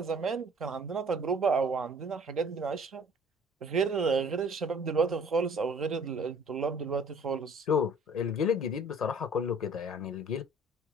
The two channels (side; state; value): both; normal; correlation 0.51